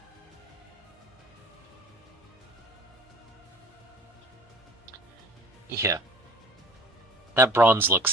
Yeah, that bronze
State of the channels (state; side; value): normal; both; correlation 0.47